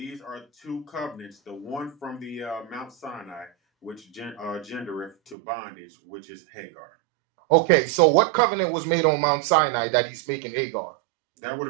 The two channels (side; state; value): left; drops out; at 5.4 s